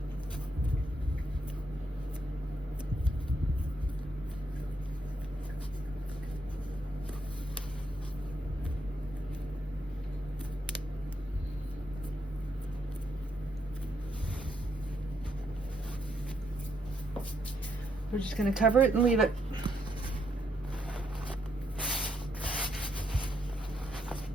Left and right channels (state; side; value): normal; both; correlation 0.77